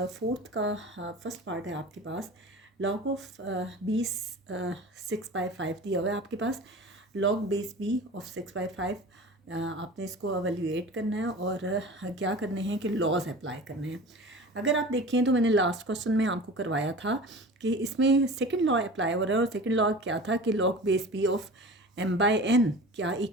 फोर्थ का फर्स्ट पार्ट है आपके पास। लॉग ऑफ 20 6/5 दिया हुआ है आपके पास। लॉग बेस बी ऑफ 6/5 आपने इसको एवेल्यूएट करना है और क्या करने हैं कि लॉज अप्लाई करने हैं। अगर आप देखें तो मैंने लास्ट क्वेश्चन में आपको करवाया था कि इसमें सेकंड लॉ अप्लाई हो रहा है और सेकंड लॉ क्या था कि log base B of m/n क्या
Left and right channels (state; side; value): normal; both; correlation 0.36